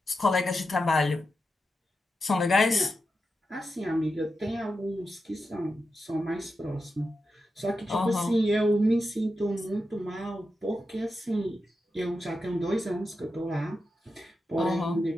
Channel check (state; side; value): normal; both; correlation 0.89